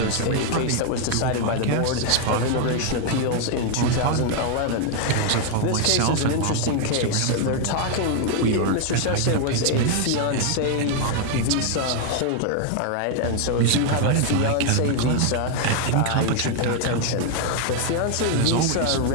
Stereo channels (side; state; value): both; different; correlation 0.00